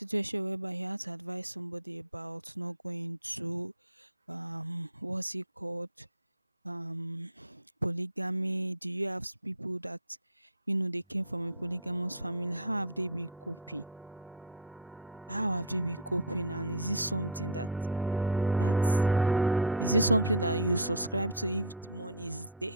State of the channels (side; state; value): both; normal; correlation -0.20